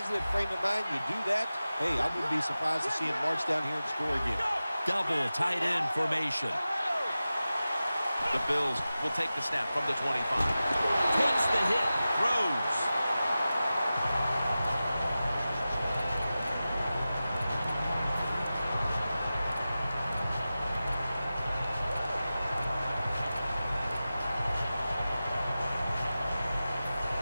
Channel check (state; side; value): inverted; both; correlation -0.95